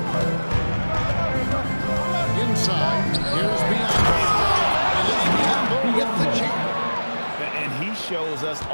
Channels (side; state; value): both; inverted; correlation -1.00